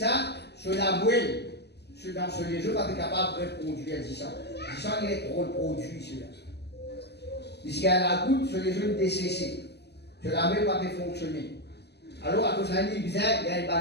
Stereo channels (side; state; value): right; late; 0.49 ms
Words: sur la bouelle. Dans ce les jeux, pas capable de produire 10 ans. 10 ans, il est trop produit, celui-là. Jusqu'à la goutte, sur les jeux décessés. Sur la main, pas fonctionner. Alors, à cause d'un bizarre, il y